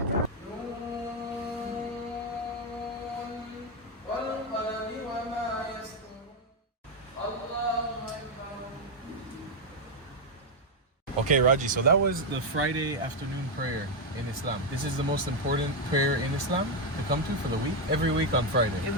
Okay, Raji, so that was the Friday afternoon prayer in Islam. This is the most important prayer in Islam to come to for the week. Every week on Friday.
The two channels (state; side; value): normal; both; correlation 0.03